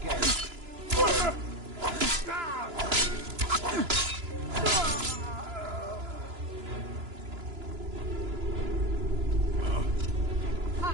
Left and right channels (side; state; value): left; late; 2.9 ms